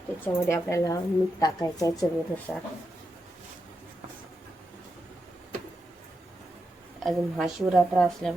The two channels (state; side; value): normal; both; correlation 0.86